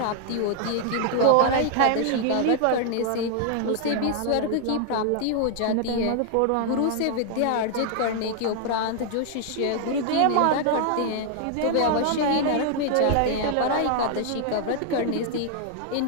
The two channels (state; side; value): different; both; correlation 0.00